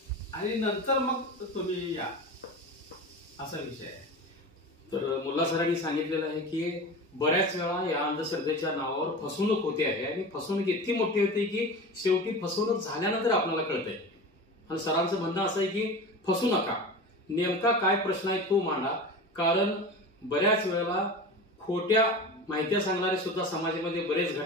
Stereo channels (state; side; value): normal; both; correlation 0.31